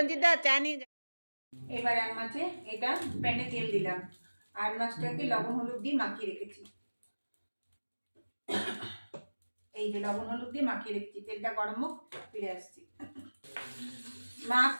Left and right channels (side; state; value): both; inverted; correlation -1.00